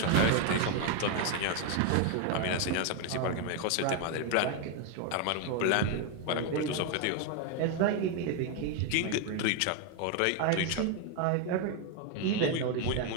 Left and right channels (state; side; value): different; both; correlation 0.01